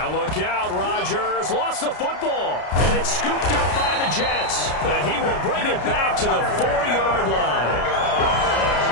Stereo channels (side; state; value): right; late; 33 ms